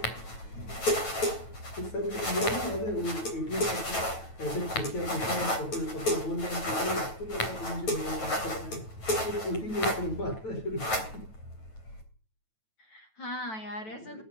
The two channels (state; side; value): late; right; 9.1 ms